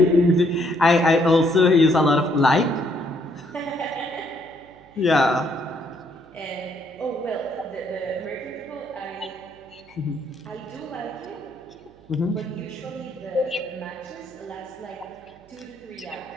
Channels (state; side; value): noise; right; hum, 27 dB below the sound